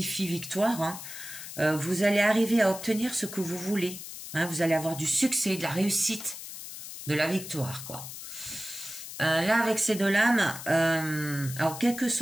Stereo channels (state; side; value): noise; left; hiss, 11 dB below the sound